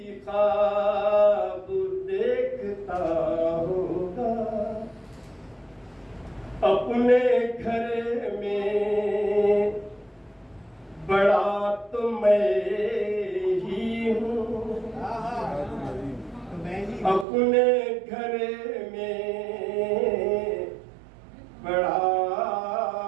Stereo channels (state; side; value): drops out; left; at 17.2 s